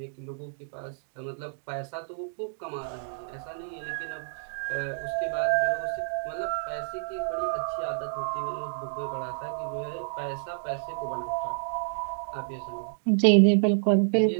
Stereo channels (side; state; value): left; silent; digital silence